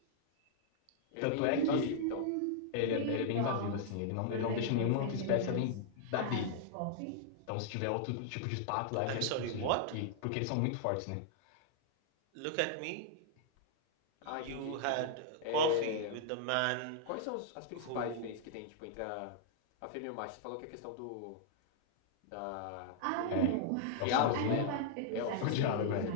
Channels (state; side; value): different; both; correlation -0.01